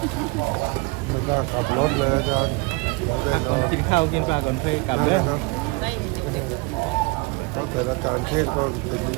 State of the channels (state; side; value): quieter; left; 26.4 dB